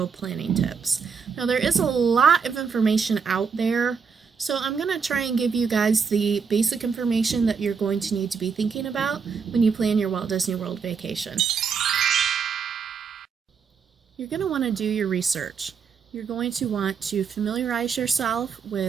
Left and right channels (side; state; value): left; quieter; 5.9 dB